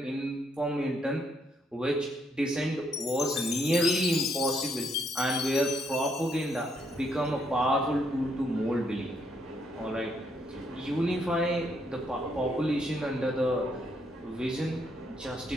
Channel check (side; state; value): both; normal; correlation 0.73